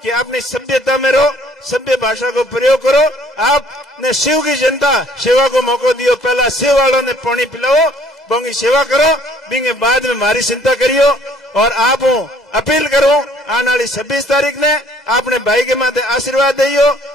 कि अपनी सभ्यता में रहो, सभ्य भाषा को प्रयोग करो। आपने शिव की जनता सेवा को मौका दियो, पहला शिव वालों ने पानी पिलाओ, बोंगी सेवा करो, बिंगे बाद में मारी चिंता करियो। और आप अपील करो, आने वाली 26 तारीख ने आपने भाई के माथे आशीर्वाद दियो,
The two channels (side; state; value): both; normal; correlation 0.59